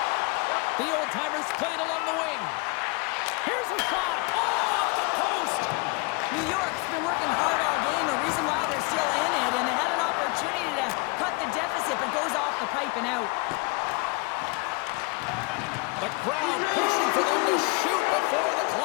The old-timers played along the wing. Here's a shot. Oh, off the post. New York's been working hard all game, a reason why they're still in it, and they had an opportunity to cut the deficit, but goes off the pipe and out. The crowd pushing for them to shoot before the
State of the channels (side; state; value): right; quieter; 27.9 dB